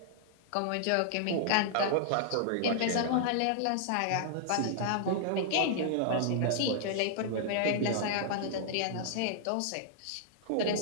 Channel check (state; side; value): different; both; correlation -0.01